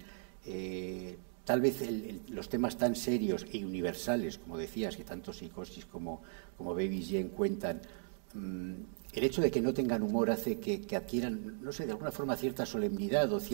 tal vez los temas tan serios y universales, como decías, que tanto Psicosis como Baby Jane cuentan, el hecho de que no tengan humor hace que adquieran, no sé, de alguna forma cierta solemnidad o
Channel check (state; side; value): silent; left; digital silence